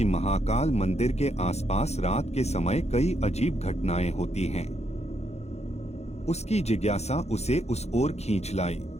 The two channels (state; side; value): late; right; 0.31 ms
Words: महाकाल मंदिर के आसपास रात के समय कई अजीब घटनाएं होती हैं। उसकी जिज्ञासा उसे उस ओर खींच लाई।